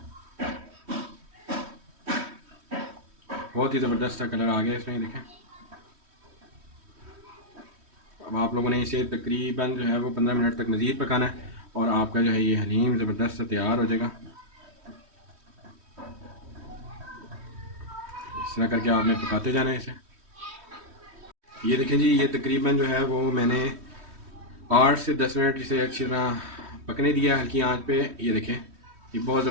बहुत ही ज़बरदस्त सा कलर आ गया इसमें, देखें। अब आप लोगों ने इसे तकरीबन जो है वो 15 मिनट तक मज़ीद पकाना है और आपका जो है ये हलीम ज़बरदस्त सा तैयार हो जाएगा। इस तरह करके आपने पकाते जाना है इसे। ये देखें जी, ये तकरीबन जो है वो मैंने 8 से 10 मिनट इसे अच्छी तरह पकने दिया हल्की आंच पे। ये देखें ये बहुत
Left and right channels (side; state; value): left; late; 3.1 ms